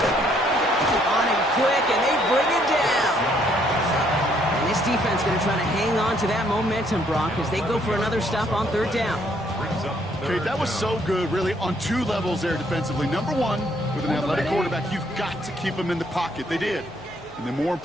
On him quick, and they bring it down. And this defense going to try to hang on to that momentum, Brock, as they go for another stop on 3rd down. Okay, that was so good, really, on 2 levels there defensively. Number 1, with an athletic quarterback, you've got to keep him in the pocket. They did. And then more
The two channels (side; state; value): left; noise; hum, 22 dB below the sound